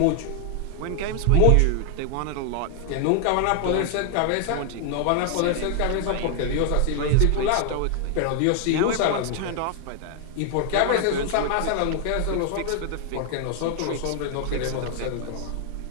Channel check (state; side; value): different; both; correlation 0.00